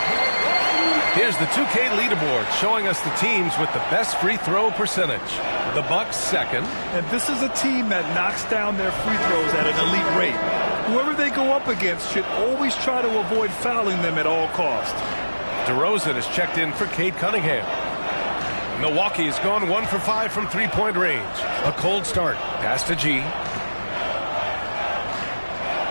Here's the 2K leaderboard showing us the teams with the best free throw percentage. The Bucks second. And this is a team that knocks down their free throws at an elite rate. Whoever they go up against should always try to avoid fouling them at all costs. DeRozan is checked in for Cade Cunningham. Milwaukee has gone 1 for 5 from three-point range. A cold start. Pass to G.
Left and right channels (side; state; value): both; inverted; correlation -1.00